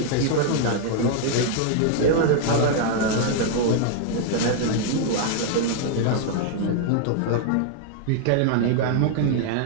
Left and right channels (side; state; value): both; different; correlation 0.00